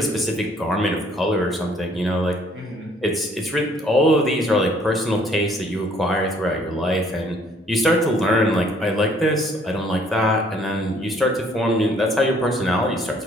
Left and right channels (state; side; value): normal; both; correlation 0.61